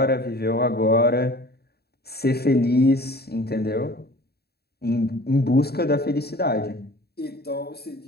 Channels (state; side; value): late; right; 0.46 ms